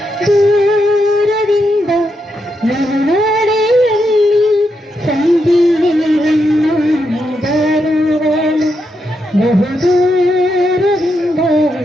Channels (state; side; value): normal; both; correlation 0.83